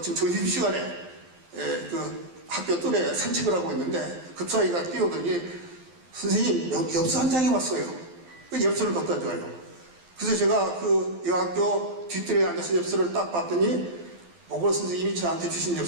점심시간에 그 학교 뜰에 산책을 하고 있는데 급사이가 뛰어오더니 선생님 엽서 한 장이 왔어요. 그 엽서를 갖다 줘요. 그래서 제가 그 여학교 뒷뜰에 앉아서 엽서를 딱 봤더니 보고 선생님이 저한테 주신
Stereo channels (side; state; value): left; late; 12 ms